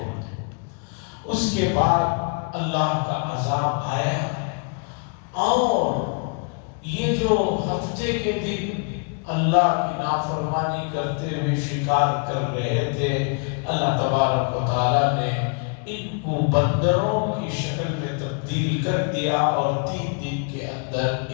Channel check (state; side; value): quieter; right; 38.7 dB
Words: اس کے بعد اللہ کا عذاب آیا، اور یہ جو ہفتے کے دن اللہ کی نافرمانی کرتے ہوئے شکار کر رہے تھے، اللہ تبارک و تعالیٰ نے ان کو بندروں کی شکل میں تبدیل کر دیا، اور 3 دن کے اندر